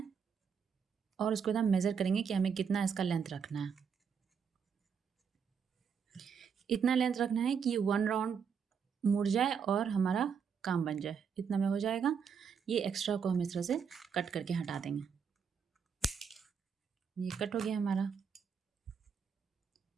और उसको हम मेज़र करेंगे कि हमें कितना इसका लेंथ रखना है। इतना लेंथ रखना है कि वन राउंड मुड़ जाए और हमारा काम बन जाए, इतना में हो जाएगा। ये एक्स्ट्रा को हम इस तरह से कट करके हटा देंगे। ये कट हो गया हमारा।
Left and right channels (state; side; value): quieter; left; 6.7 dB